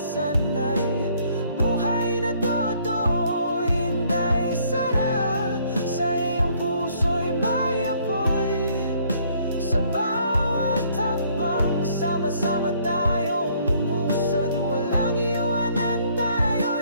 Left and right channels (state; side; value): inverted; both; correlation -0.63